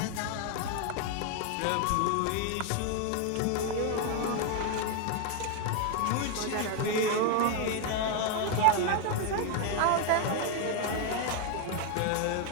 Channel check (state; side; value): different; both; correlation 0.01